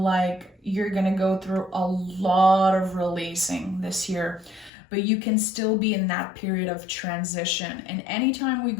you're going to go through a lot of releasing this year, but you can still be in that period of transition. And anytime we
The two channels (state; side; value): drops out; right; at 4.7 s